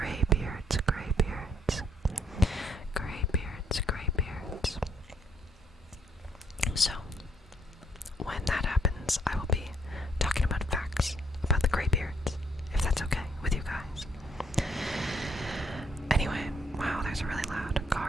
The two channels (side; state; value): both; normal; correlation 0.69